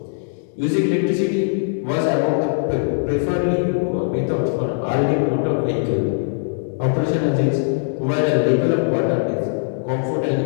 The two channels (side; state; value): right; silent; digital silence